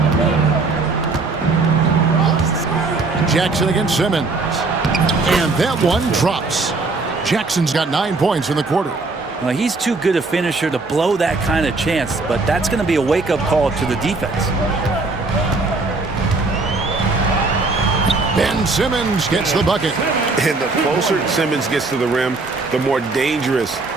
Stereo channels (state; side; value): quieter; left; 3.7 dB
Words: Jackson against Simmons. And that one drops. Jackson's got 9 points in the quarter. Well, he's too good a finisher to blow that kind of chance, but that's going to be a wake-up call to the defense. Ben Simmons gets the bucket. And the closer Simmons gets to the rim, the more dangerous